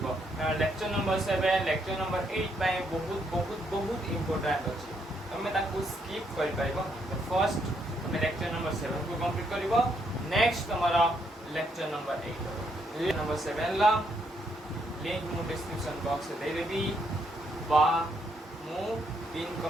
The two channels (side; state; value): both; normal; correlation 0.75